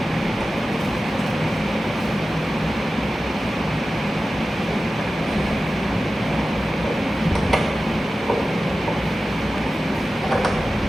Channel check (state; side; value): normal; both; correlation 0.94